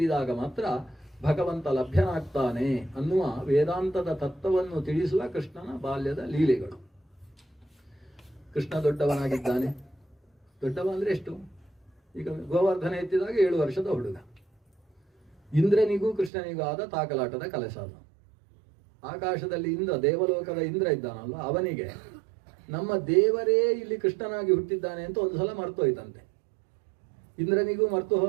ಮಾತ್ರ ಭಗವಂತ ಲಭ್ಯನಾಗ್ತಾನೆ ಅನ್ನುವ ವೇದಾಂತದ ತತ್ವವನ್ನು ತಿಳಿಸುವ ಕೃಷ್ಣನ ಬಾಲ್ಯದ ಲೀಲೆಗಳು. ಕೃಷ್ಣ ದೊಡ್ಡವನಾಗಿದ್ದಾನೆ. ದೊಡ್ಡವ ಅಂದ್ರೆ ಎಷ್ಟು? ಈಗ ಗೋವರ್ಧನ ಎತ್ತಿದಾಗ 7 ವರ್ಷದ ಹುಡುಗ. ಇಂದ್ರನಿಗೂ ಕೃಷ್ಣನಿಗೂ ಆದ ತಾಕಲಾಟದ ಕೆಲಸ ಅದು. ಆಕಾಶದಲ್ಲಿ ಇಂದ್ರ, ದೇವಲೋಕದ ಇಂದ್ರ ಇದ್ದಾನಲ್ಲ, ಅವನಿಗೆ ನಮ್ಮ ದೇವರೇ ಇಲ್ಲಿ ಕೃಷ್ಣನಾಗಿ ಹುಟ್ಟಿದ್ದಾನೆ ಅಂತ ಒಂದು ಸಲ ಮರ್ತೋಯ್ತಂತೆ. ಇಂದ್ರನಿಗೂ ಮರೆತು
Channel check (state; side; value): drops out; left; at 16.3 s